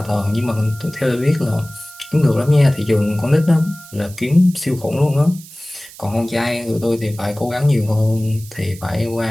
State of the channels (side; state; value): right; noise; hiss, 19 dB below the sound